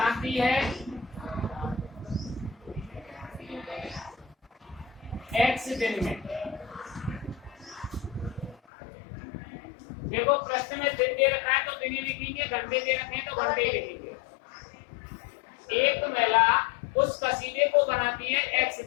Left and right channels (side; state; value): right; drops out; at 8.6 s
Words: है X दिन में। देखो प्रश्न में दिन दे रखा है तो दिन ही लिखेंगे, घंटे दे रखे हैं तो घंटे ही लिखेंगे। एक महिला उस कसीदे को बनाती है एक्स